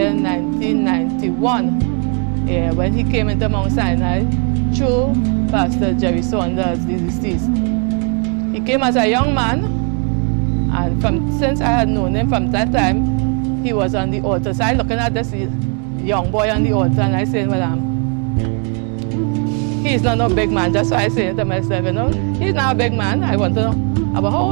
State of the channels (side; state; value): left; quieter; 39.1 dB